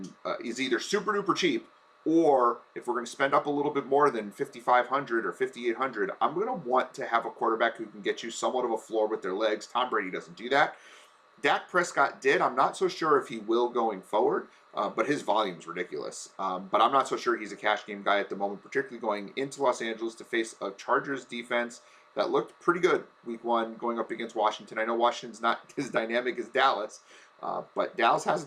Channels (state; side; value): identical; both; correlation 1.00